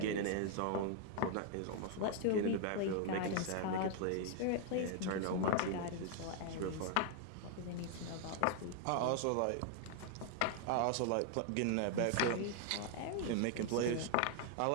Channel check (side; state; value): both; different; correlation 0.00